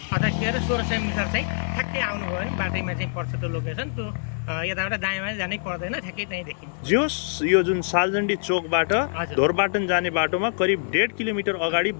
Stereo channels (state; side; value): silent; right; digital silence